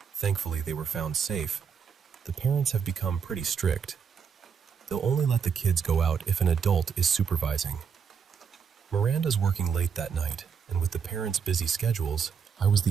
thankfully they were found safe, the parents have become pretty strict. They'll only let the kids go out if an adult is supervising. Miranda's working late that night, and with the parents' busy schedules, I was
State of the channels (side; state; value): left; quieter; 6.7 dB